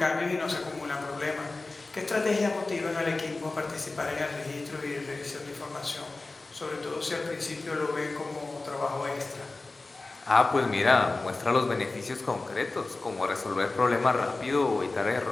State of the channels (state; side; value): quieter; right; 3.3 dB